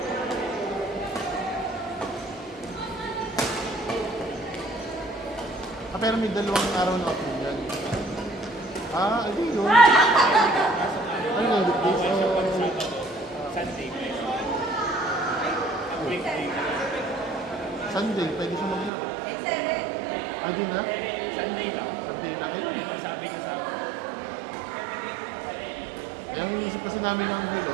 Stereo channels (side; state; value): left; drops out; at 18.9 s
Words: Pero may 2 araw na ako yan. Ano yun? Ano yun? Weekdays Bawal siya o... pag Sabado. Sunday pwede. Ang weekday. Sunday, pwede siya maglaro. Di na? Sunday lang. Sunday na kayo. Yan ang sabi niya sa akin. Kaya ang inisip kasi namin ng Hilo,